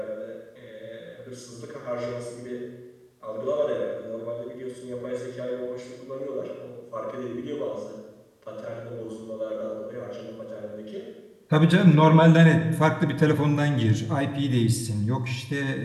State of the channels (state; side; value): identical; both; correlation 1.00